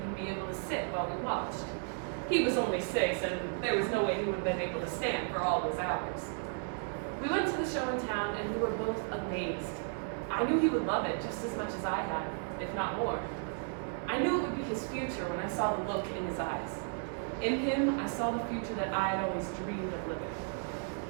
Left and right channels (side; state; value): left; silent; 55 dB below the other